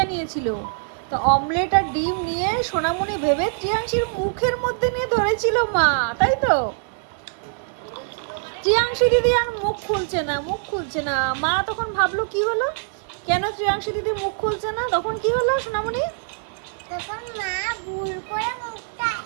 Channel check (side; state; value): left; silent; 56 dB below the other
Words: নিয়েছিল। তো অমলেট আর ডিম নিয়ে সোনামণি ভেবে ত্রিয়াংশীর মুখের মধ্যে নিয়ে ধরেছিল মা, তাই তো? ত্রিয়াংশী দিদি আর মুখ খুলছে না, মুখ খুলছে না। মা তখন ভাবলো কি হলো, কেন ত্রিয়াংশী দিদি মুখ খুলছে না? তখন কি হলো সোনামণি? তখন মা ভুল করে মুখটা